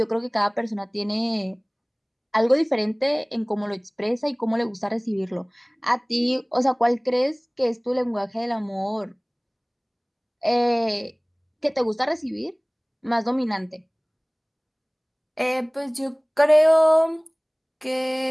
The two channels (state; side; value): identical; both; correlation 1.00